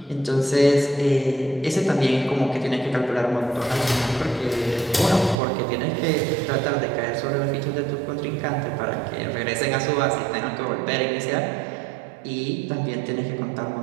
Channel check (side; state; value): left; drops out; at 5.4 s